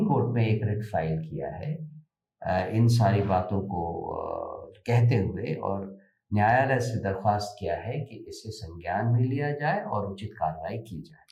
कोर्ट में एक रिट फाइल किया है इन सारी बातों को कहते हुए, और न्यायालय से दरख्वास्त किया है कि इसे संज्ञान में लिया जाए और उचित कार्रवाई की जाए।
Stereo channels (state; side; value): identical; both; correlation 1.00